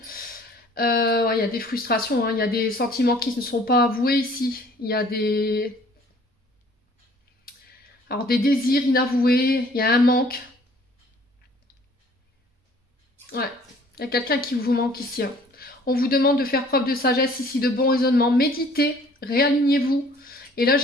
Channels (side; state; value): both; normal; correlation 0.55